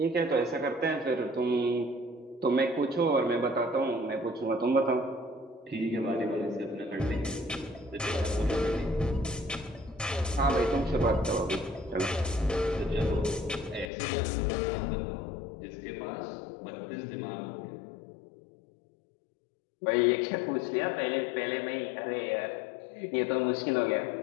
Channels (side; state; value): right; drops out; at 13.9 s